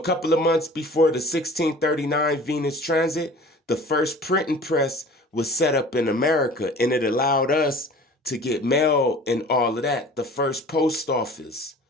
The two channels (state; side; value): normal; both; correlation 0.45